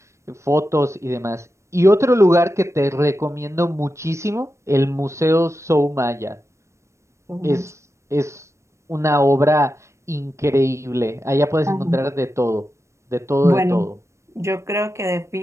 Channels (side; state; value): left; late; 0.14 ms